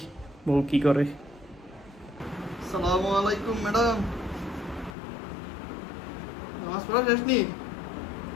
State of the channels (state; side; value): drops out; right; at 5.0 s